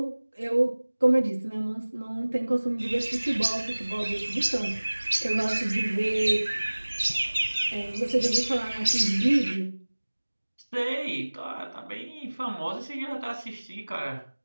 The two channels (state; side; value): inverted; both; correlation -1.00